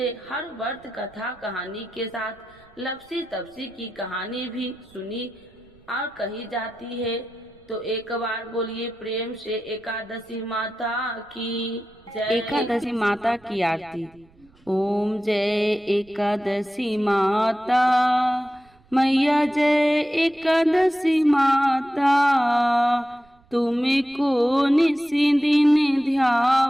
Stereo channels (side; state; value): right; noise; rumble, 30 dB below the sound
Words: हर व्रत कथा कहानी के साथ लपसी तपसी की कहानी भी सुनी और कही जाती है। तो एक बार बोलिए प्रेम से एकादशी माता की जय। एकादशी माता की आरती। ओम जय एकादशी माता मैया, जय एकादशी माता। तुमको निसी दिन